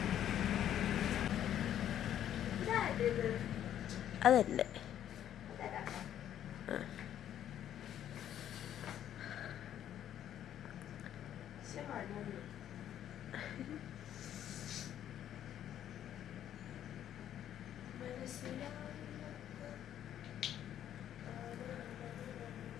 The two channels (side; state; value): right; quieter; 10.8 dB